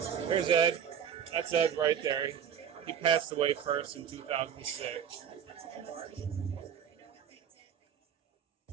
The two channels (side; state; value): left; quieter; 8.4 dB